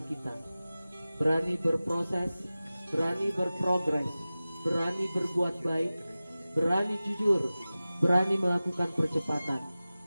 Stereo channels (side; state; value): both; inverted; correlation -0.96